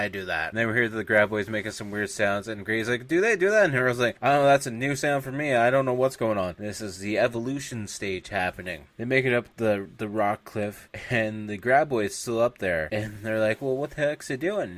do that? And then we hear the graboids making some weird sounds, and Grady's like, do they do that? And Earl's like, I don't know, that's a new sound for me. I don't know what's going on. This is the evolution stage happening. They make it up the rock cliff, and the graboid's still up there, and they're like, well, what the heck's it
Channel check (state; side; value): identical; both; correlation 1.00